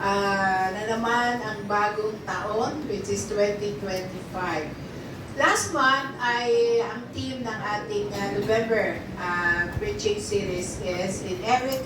naman ang bagong taon, which is 2025. Last month ay ang theme ng ating November preaching series is In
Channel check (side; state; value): both; identical; correlation 1.00